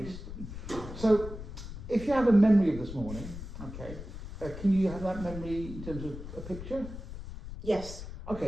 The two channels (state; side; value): noise; left; rumble, 10 dB below the sound